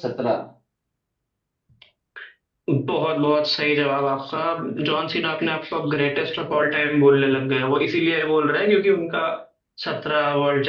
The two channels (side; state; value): both; identical; correlation 1.00